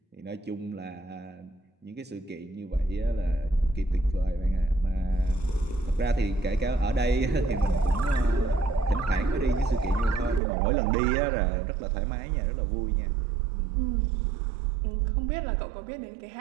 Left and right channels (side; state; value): left; drops out; at 10.4 s